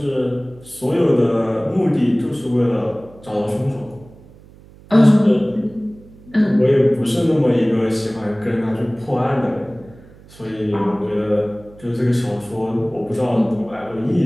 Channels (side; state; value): right; noise; hum, 23 dB below the sound